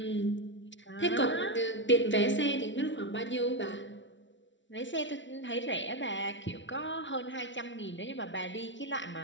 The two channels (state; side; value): late; right; 0.55 ms